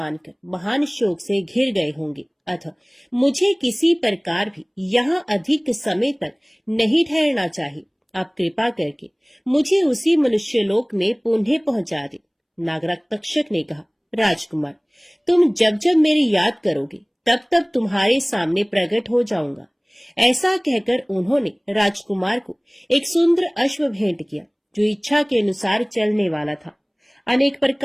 महान शोक से घिर गए होंगे, अतः मुझे किसी प्रकार भी यहाँ अधिक समय तक नहीं ठहरना चाहिए। आप कृपा करके मुझे उसी मनुष्यलोक में पुनः पहुंचा दे। नागराज तक्षक ने कहा, राजकुमार, तुम जब जब मेरी याद करोगे तब तब तुम्हारे सामने प्रकट हो जाऊंगा। ऐसा कहकर उन्होंने राजकुमार को एक सुंदर अश्व भेंट किया, जो इच्छा के अनुसार चलने वाला था। अनेक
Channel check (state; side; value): identical; both; correlation 1.00